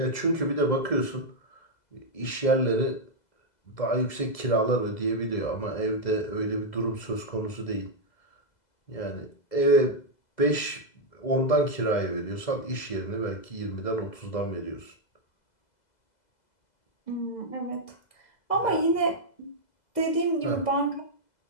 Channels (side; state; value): right; late; 2.0 ms